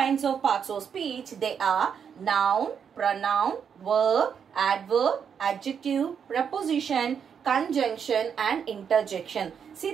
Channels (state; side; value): quieter; left; 7.3 dB